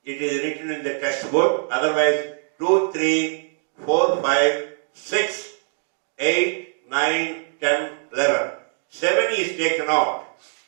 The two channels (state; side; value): silent; left; 56 dB below the other